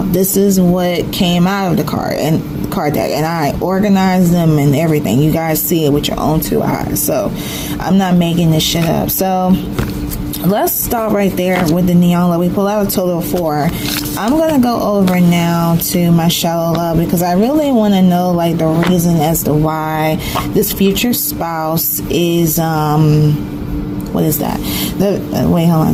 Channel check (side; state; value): both; identical; correlation 1.00